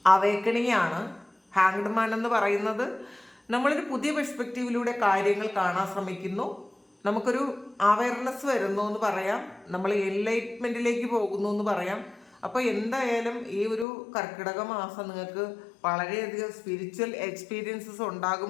അവേക്കണിങ് ആണ്. ഹാങ്ഡ് മാൻ എന്ന് പറയുന്നത് നമ്മളൊരു പുതിയ പെർസ്പെക്റ്റീവിലൂടെ കാര്യങ്ങൾ കാണാൻ ശ്രമിക്കുന്നു. നമുക്കൊരു അവയർനെസ് വരുന്നു എന്ന് പറയാം. നമ്മൾ എൻലൈറ്റ്മെൻറ്റിലേക്ക് പോകുന്നു എന്ന് പറയാം. അപ്പോൾ എന്തായാലും ഈ ഒരു കർക്കിടക മാസം നിങ്ങൾക്ക് വളരെയധികം സ്പിരിച്വൽ എക്സ്പീരിയൻസസ്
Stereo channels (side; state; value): right; drops out; at 13.9 s